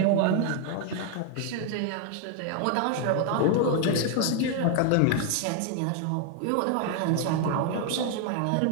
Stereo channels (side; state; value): both; different; correlation 0.00